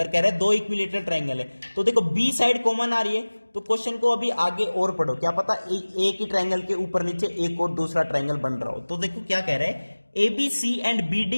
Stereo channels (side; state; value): both; inverted; correlation -1.00